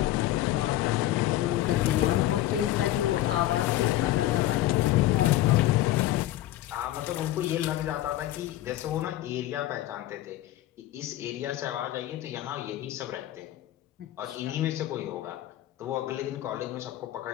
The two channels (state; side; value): quieter; right; 14.5 dB